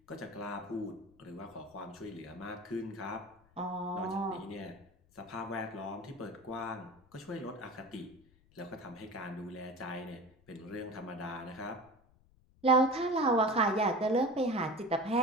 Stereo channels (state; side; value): noise; left; rumble, 30 dB below the sound